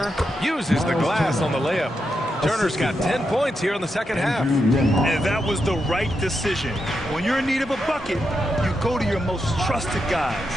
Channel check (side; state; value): both; normal; correlation 0.85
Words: uses the glass on the layup. Turner's got 10 points here in the second half. And that was the right decision. When you're in need of a bucket, you go to your most trusted guys.